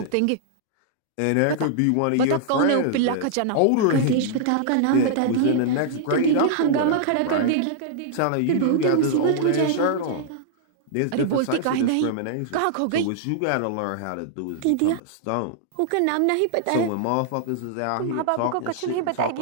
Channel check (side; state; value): both; different; correlation -0.01